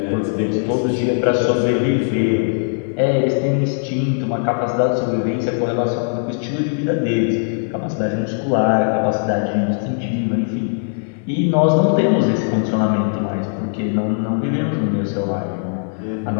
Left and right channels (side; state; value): right; silent; 62 dB below the other